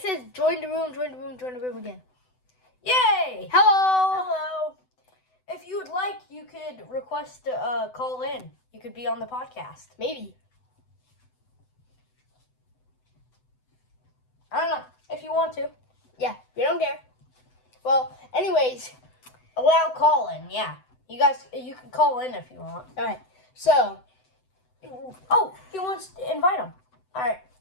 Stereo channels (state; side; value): late; right; 7.9 ms